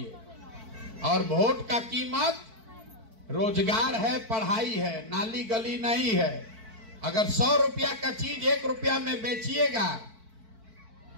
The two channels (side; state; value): left; late; 4.5 ms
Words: और वोट का कीमत रोजगार है, पढ़ाई है, नाली गली नहीं है। अगर 100 रुपया का चीज 1 रुपया में बेचिएगा